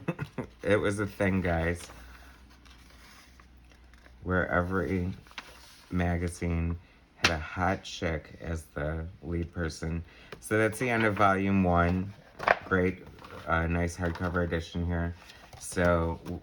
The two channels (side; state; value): both; identical; correlation 1.00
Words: It was a thing, guys, where every magazine had a hot chick as the lead person. So that's the end of volume 1. Great, nice hardcover edition here. So